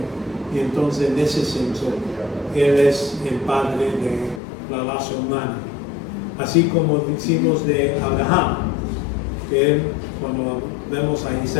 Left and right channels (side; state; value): right; drops out; at 4.4 s